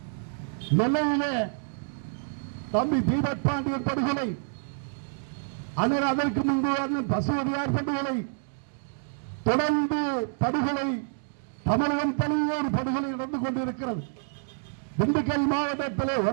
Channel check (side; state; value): left; silent; digital silence